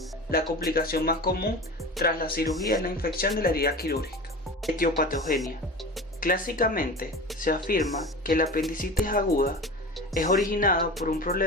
La complicación más común tras la cirugía es la infección de la herida quirúrgica. Etiopatogenia. Clásicamente se afirma que la apendicitis aguda es originada por un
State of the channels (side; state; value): both; normal; correlation 0.32